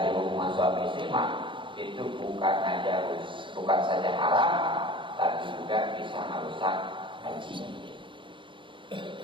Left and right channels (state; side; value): late; left; 0.24 ms